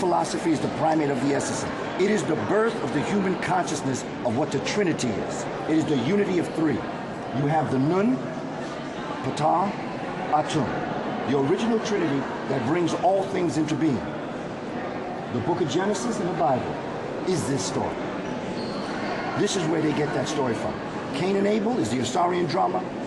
is the primate of the essence. It is the birth of the human consciousness of what the Trinity is. It is the unity of 3. You have the Nun, Ptah, Atum, the original Trinity that brings all things into being. The book of Genesis and the Bible is this story. This is where they get that story from. Cain and Abel is the Assyrian drama,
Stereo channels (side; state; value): both; identical; correlation 1.00